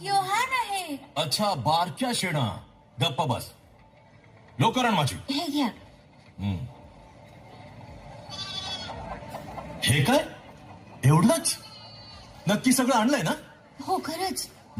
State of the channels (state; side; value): identical; both; correlation 1.00